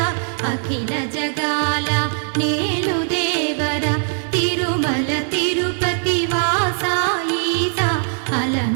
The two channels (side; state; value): left; silent; digital silence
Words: అఖిల జగాల నేలు దేవర తిరుమల తిరుపతి వాస ఈస